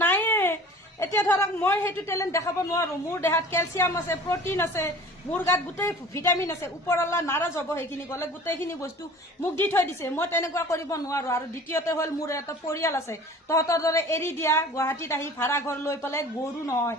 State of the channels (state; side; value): normal; both; correlation 0.44